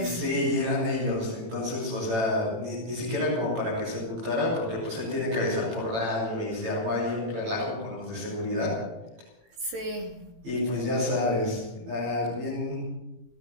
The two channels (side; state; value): left; late; 18 ms